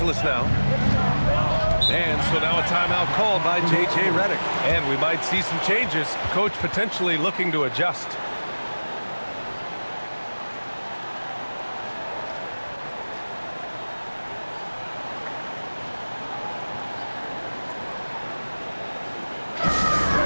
now. And so now a timeout called by J.J. Redick. And we might see some changes. Coach potentially looking to adjust.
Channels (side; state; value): both; inverted; correlation -1.00